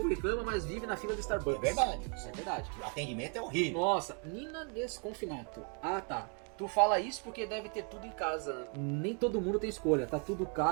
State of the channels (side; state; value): left; quieter; 39.0 dB